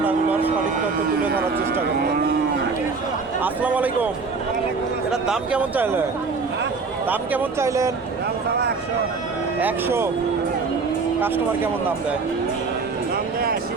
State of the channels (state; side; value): quieter; left; 4.5 dB